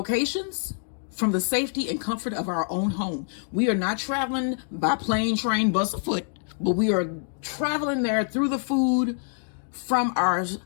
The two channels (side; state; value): right; silent; digital silence